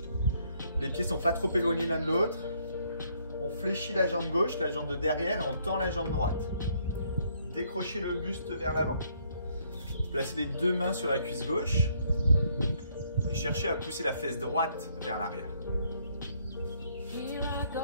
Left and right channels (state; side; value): inverted; both; correlation -0.68